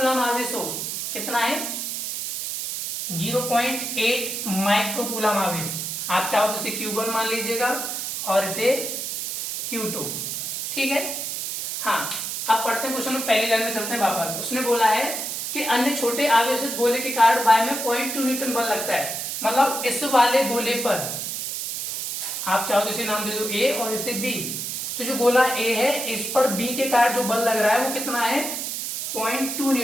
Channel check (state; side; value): noise; right; hiss, 4 dB below the sound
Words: आवेश हो, कितना है 0.8 माइक्रोकूलम आवेश। आप चाहो तो इसे Q1 मान लीजिएगा और इसे Q2, ठीक है। हाँ, अब पढ़ते हैं क्वेश्चन में, पहली लाइन में चलते हैं वापस। उसने बोला है कि अन्य छोटे आवेशित गोले के कारण वायु में 0.2 न्यूटन बल लगता है। मतलब इस वाले गोले पर आप चाहो तो इसे नाम दे दो A और इसे B। तो जो गोला A है इस पर B के कारण जो बल लग रहा है वो कितना है 0.2